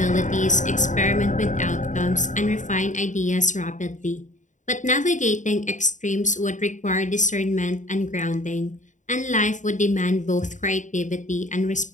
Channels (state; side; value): late; right; 0.36 ms